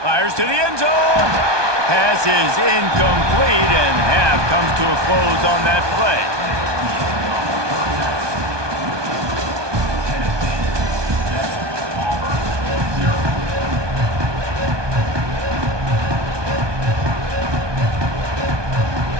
Fires to the end zone. Pass is incomplete, and half comes to a close on that play.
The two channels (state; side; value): late; left; 1.2 ms